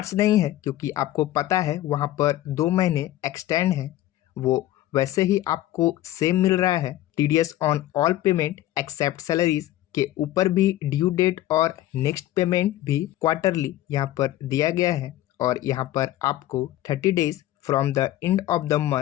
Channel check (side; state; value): right; quieter; 14.5 dB